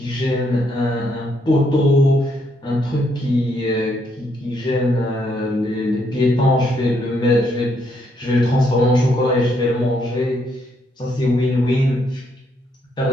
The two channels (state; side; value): normal; both; correlation 0.74